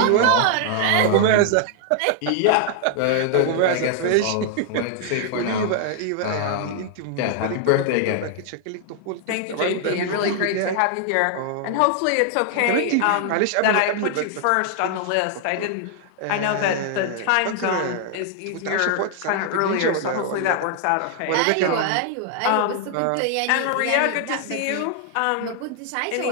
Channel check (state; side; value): different; both; correlation 0.00